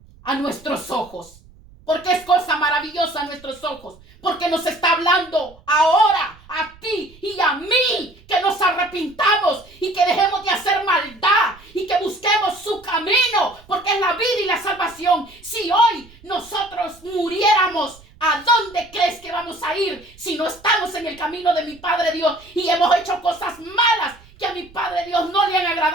a nuestros ojos. ¿Por qué es cosa maravillosa a nuestros ojos? Porque nos está hablando ahora a ti y a mí que nos arrepintamos y que dejemos de hacer maldad y que busquemos su camino, porque es la vida y la salvación. Si hoy nosotros muriéramos, ¿a dónde crees que vamos a ir si no estamos en el camino de mi Padre Dios y hemos hecho cosas malas que a mi Padre Dios no le han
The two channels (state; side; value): noise; right; rumble, 25 dB below the sound